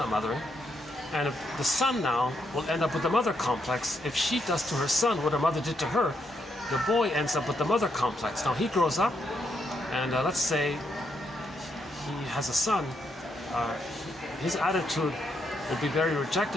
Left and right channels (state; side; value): normal; both; correlation 0.78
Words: mothering. And if the son now will end up with the mother complex, if she does to her son what her mother did to her, the boy ends up with the mother complex. Now he grows up, and let's say he has a son. His attitude will be very